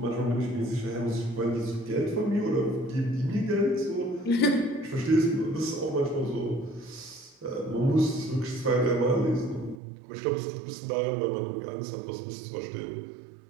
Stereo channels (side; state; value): left; drops out; at 9.8 s